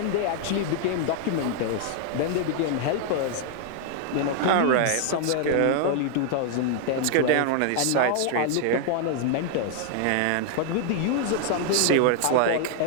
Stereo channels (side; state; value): both; different; correlation 0.00